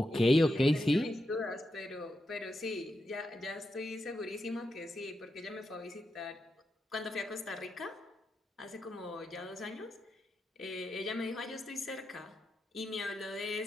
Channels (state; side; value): normal; both; correlation 0.86